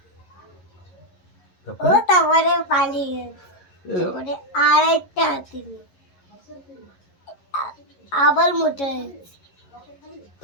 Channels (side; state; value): right; late; 11 ms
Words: ও তারপরে তারপরে পালিয়ে গেছে। তারপরে আরেকটা হাতি নিয়ে আবার মোটা হয়েছে।